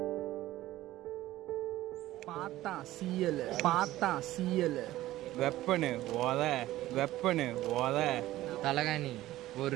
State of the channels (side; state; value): left; quieter; 15.6 dB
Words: பார்த்தா சீயல் வெப்பனு ஓத, வெப்பனு ஓத. தலகாணி